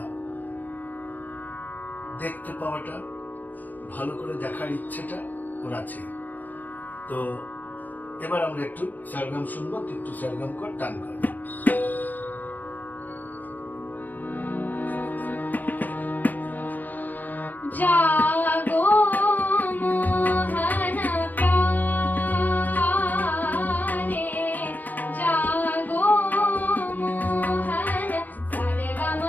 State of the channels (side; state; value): right; late; 0.084 ms